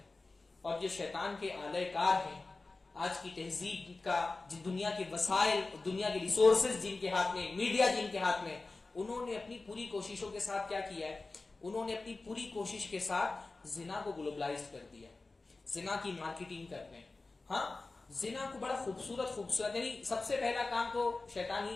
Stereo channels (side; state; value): right; quieter; 3.5 dB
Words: اور جو شیطان کے آلہ کار ہیں آج کی تہذیب کا, دنیا کے وسائل, دنیا کے ریسورسز جن کے ہاتھ میں, میڈیا جن کے ہاتھ میں, انہوں نے اپنی پوری کوششوں کے ساتھ کیا کیا ہے؟ انہوں نے اپنی پوری کوشش کے ساتھ زنا کو گلوبلائز کر دیا. زنا کی مارکیٹنگ کرتے ہیں. ہاں, زنا کو بڑا خوبصورت یعنی سب سے پہلا کام تو شیطان ہی